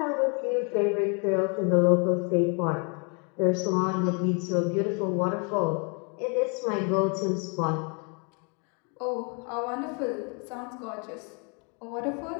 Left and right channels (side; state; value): right; quieter; 36.0 dB